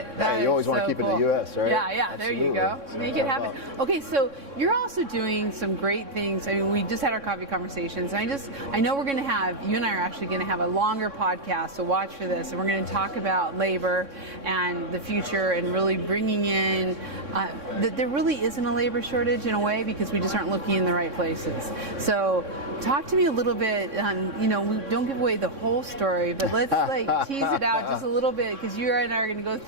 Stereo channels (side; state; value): left; late; 3.6 ms